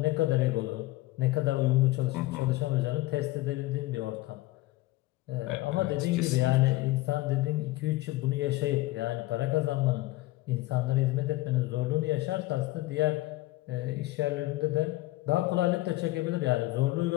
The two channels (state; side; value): quieter; right; 18.6 dB